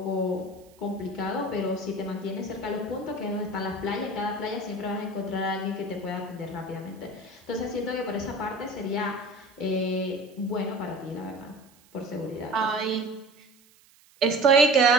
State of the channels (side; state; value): right; noise; hiss, 29 dB below the sound